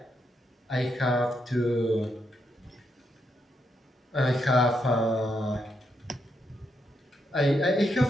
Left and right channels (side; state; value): both; normal; correlation 0.80